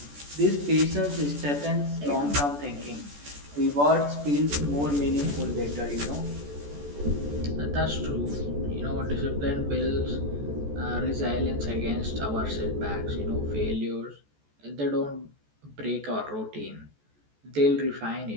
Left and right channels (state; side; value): late; left; 14 ms